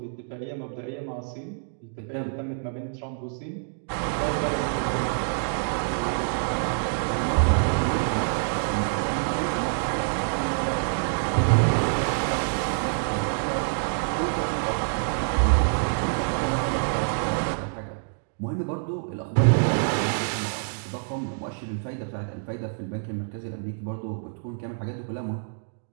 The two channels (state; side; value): silent; left; digital silence